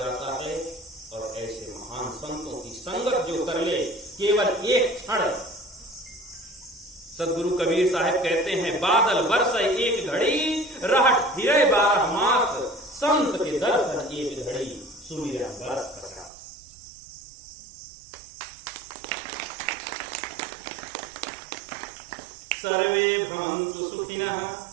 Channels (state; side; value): drops out; left; at 16.3 s